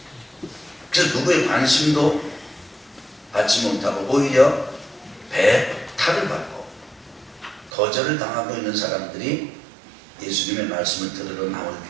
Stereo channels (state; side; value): drops out; left; at 7.7 s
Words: 그래서 누구의 관심도 받지 못하고 오히려 배탈을 받고 거절을 당하고 있는 사람들이 예수님의 말씀을 들으러 나올